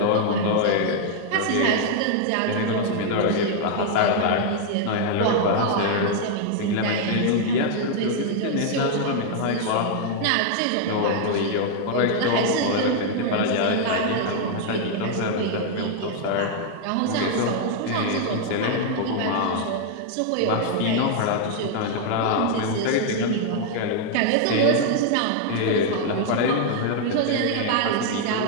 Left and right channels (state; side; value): different; both; correlation 0.00